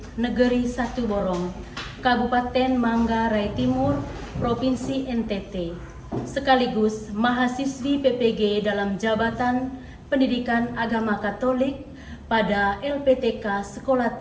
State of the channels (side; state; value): both; identical; correlation 1.00